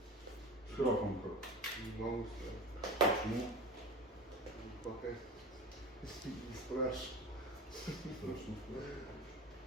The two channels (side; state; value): both; normal; correlation 0.33